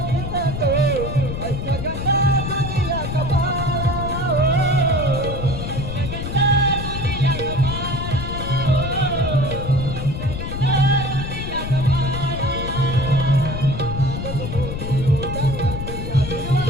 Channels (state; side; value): noise; left; rumble, 5 dB below the sound